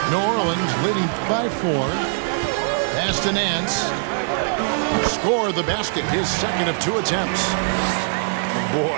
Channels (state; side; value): silent; left; 64 dB below the other